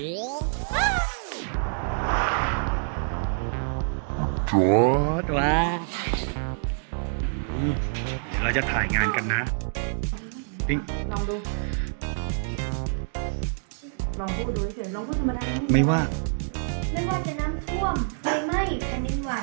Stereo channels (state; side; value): silent; left; digital silence